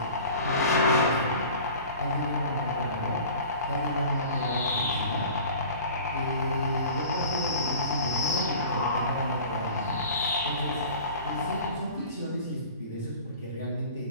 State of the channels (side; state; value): both; inverted; correlation -0.42